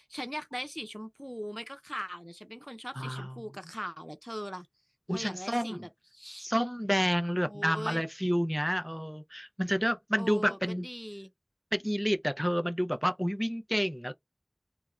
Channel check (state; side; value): identical; both; correlation 1.00